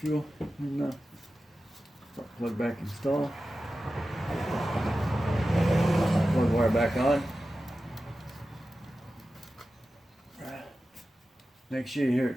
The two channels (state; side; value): normal; both; correlation 0.93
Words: you'll plug back install. Plug wire back on. Make sure you hear